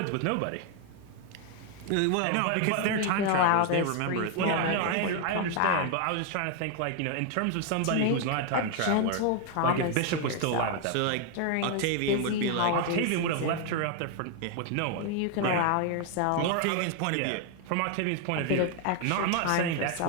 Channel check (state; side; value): different; both; correlation 0.00